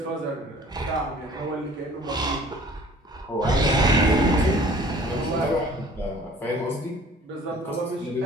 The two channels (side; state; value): both; normal; correlation 0.51